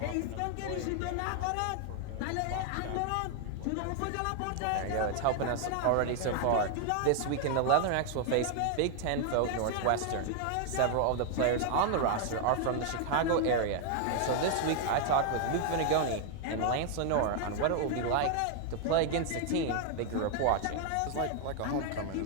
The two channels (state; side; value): different; both; correlation 0.00